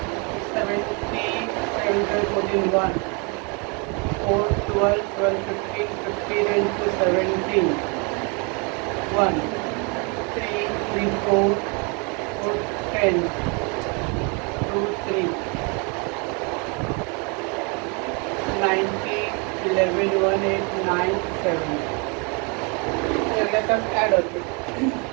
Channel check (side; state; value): left; quieter; 32.9 dB